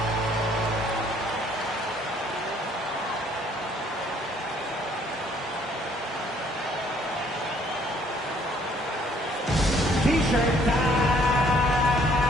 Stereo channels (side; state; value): both; normal; correlation 0.62